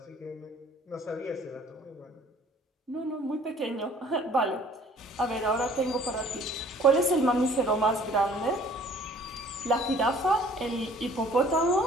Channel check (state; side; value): normal; both; correlation 0.54